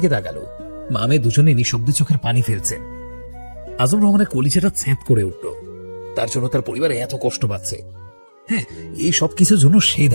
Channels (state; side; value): inverted; both; correlation -1.00